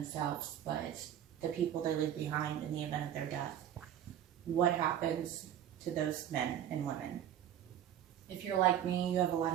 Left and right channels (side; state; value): left; quieter; 10.6 dB